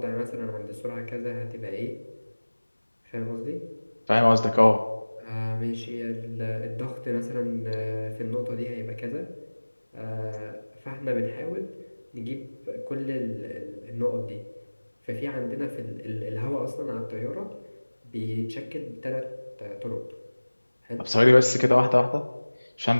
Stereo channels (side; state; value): both; inverted; correlation -1.00